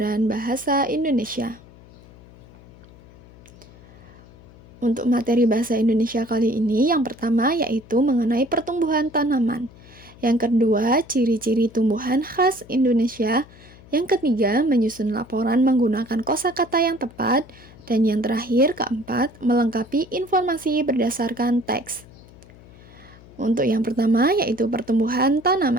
bahasa Indonesia. Untuk materi bahasa Indonesia kali ini, yang pertama yaitu mengenai pertumbuhan tanaman. Yang kedua, ciri-ciri tumbuhan khas Indonesia. Yang ketiga, menyusun laporan menggunakan kosakata yang tepat. Dan yang terakhir, keempat, melengkapi informasi berdasarkan teks. Untuk yang pertama yaitu pertumbuhan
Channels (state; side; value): noise; left; hum, 22 dB below the sound